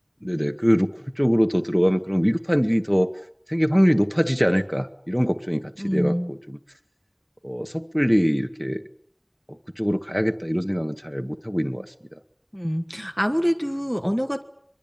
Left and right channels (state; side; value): identical; both; correlation 1.00